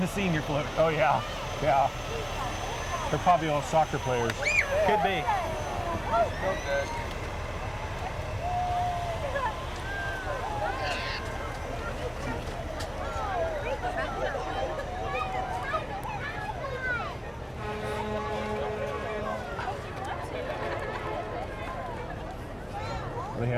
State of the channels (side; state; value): both; identical; correlation 1.00